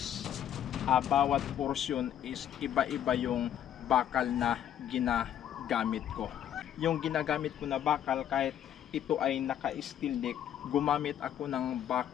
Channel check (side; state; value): right; quieter; 10.4 dB